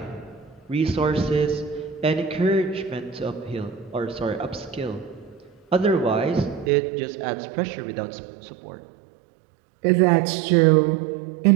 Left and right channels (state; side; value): drops out; left; at 6.7 s